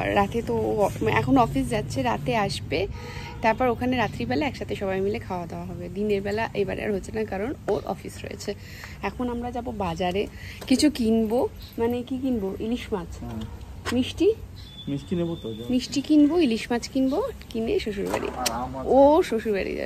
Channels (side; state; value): both; identical; correlation 1.00